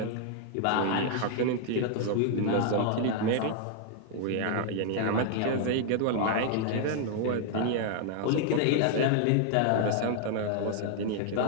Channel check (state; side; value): different; both; correlation 0.00